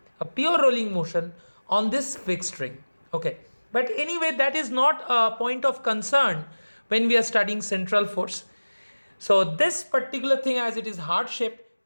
rolling motion on this fixed ring. Okay, but anyway, that is not a point of concern when we are studying central force. So this particular thing, as it is heart shaped,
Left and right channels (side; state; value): both; inverted; correlation -1.00